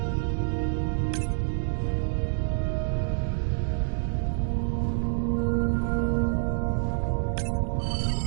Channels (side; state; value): left; silent; 56 dB below the other